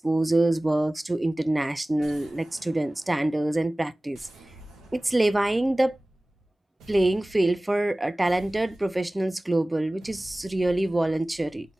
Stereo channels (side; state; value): both; normal; correlation 0.98